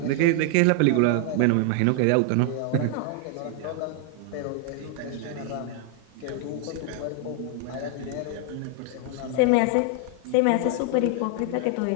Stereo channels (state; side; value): different; both; correlation 0.00